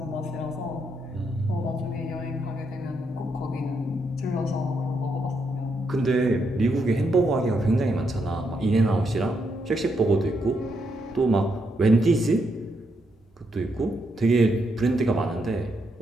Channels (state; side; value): normal; both; correlation 0.79